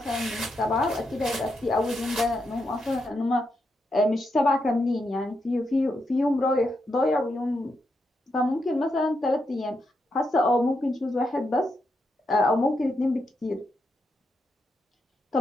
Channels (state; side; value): normal; both; correlation 0.83